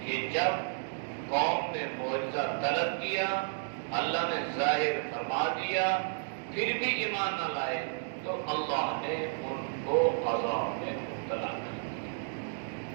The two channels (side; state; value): left; silent; digital silence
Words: جب قوم نے معجزہ طلب کیا، اللہ نے ظاہر فرما دیا، پھر بھی ایمان نہ لائے تو اللہ نے ان کو عذاب میں مبتلا کر دیا۔